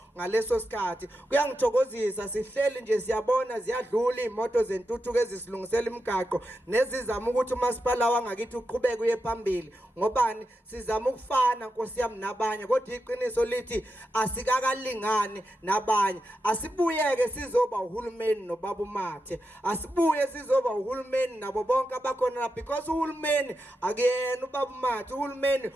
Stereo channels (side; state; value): both; normal; correlation 0.88